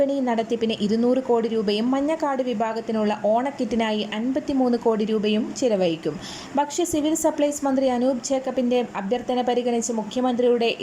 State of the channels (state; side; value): identical; both; correlation 1.00